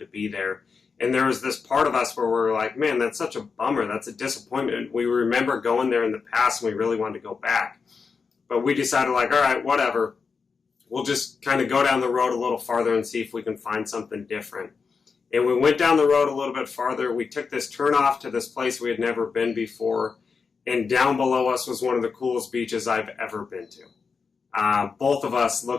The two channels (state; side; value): quieter; right; 5.3 dB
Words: be there. And there was this part of us where we were like, man, that's such a bummer. That's a disappointment. We remember going there in the past, and we really wanted to go back. But we decided, like, all right, whatever. We'll just kind of go down the road a little farther and see if we can find something different. And we went down the road a little bit farther. We took this turn off to this place we had never been before. And down below us was one of the coolest beaches I've ever been to. Both of us